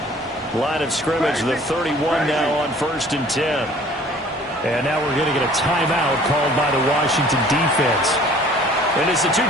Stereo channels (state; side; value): normal; both; correlation 0.52